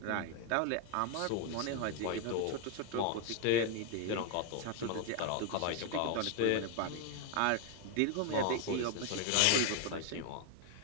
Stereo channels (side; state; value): both; different; correlation 0.01